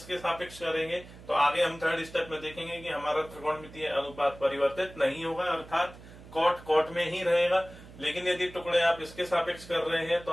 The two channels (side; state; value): right; noise; hum, 18 dB below the sound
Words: सापेक्ष करेंगे तो आगे हम थर्ड स्टेप में देखेंगे कि हमारा त्रिकोणमितीय अनुपात परिवर्तित नहीं होगा, अर्थात cot में ही रहेगा। लेकिन यदि टुकड़े आप इसके सापेक्ष कर रहे हैं तो